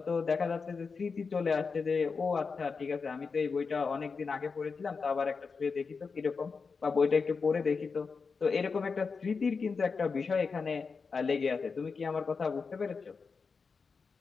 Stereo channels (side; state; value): right; quieter; 5.0 dB